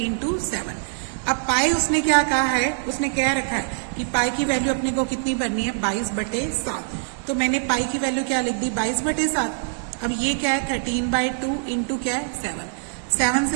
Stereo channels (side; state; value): left; silent; 63 dB below the other